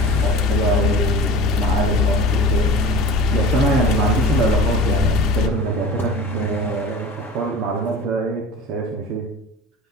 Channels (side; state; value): both; normal; correlation 0.37